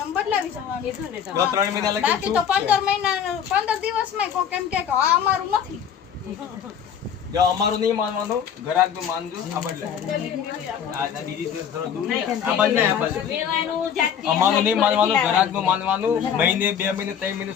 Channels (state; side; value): quieter; right; 8.3 dB